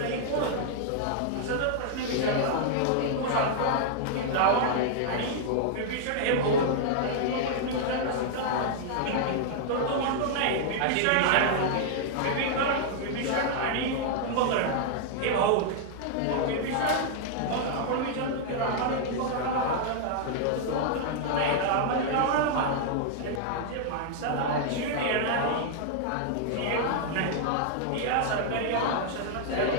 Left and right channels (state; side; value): different; both; correlation -0.01